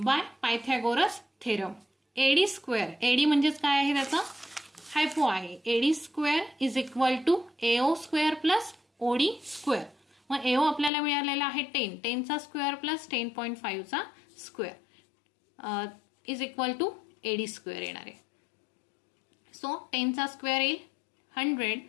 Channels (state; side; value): drops out; right; at 10.9 s